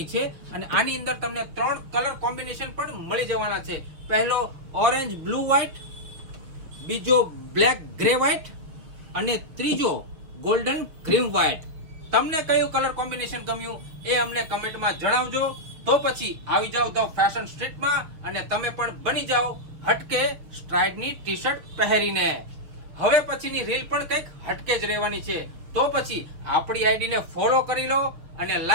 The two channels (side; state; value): left; late; 6.5 ms